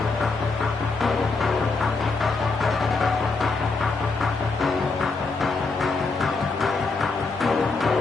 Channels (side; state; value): right; quieter; 4.0 dB